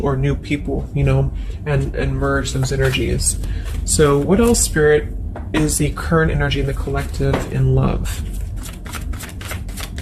or new people, and merge those energies. So what else, Spirit, is the current energy in the collective in love?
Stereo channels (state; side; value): identical; both; correlation 1.00